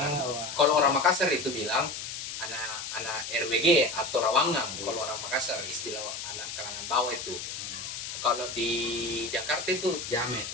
Kalau orang Makassar itu bilang anak RWG atau Rawangang. Iya. Kalau orang Makassar istilah anak kalangan bawah itu. Kalau di Jakarta itu Jamet.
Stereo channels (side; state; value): left; noise; hiss, 7 dB below the sound